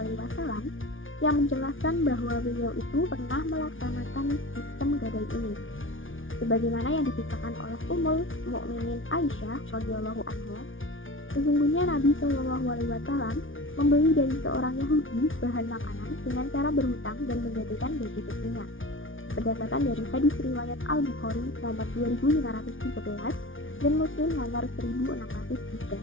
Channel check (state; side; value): late; right; 0.57 ms